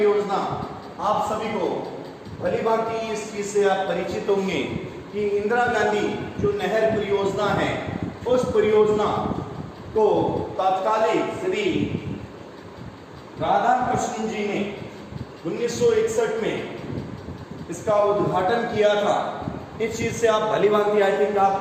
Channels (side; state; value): both; identical; correlation 1.00